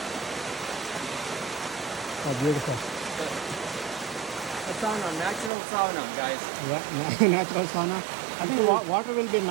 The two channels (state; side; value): drops out; left; at 5.5 s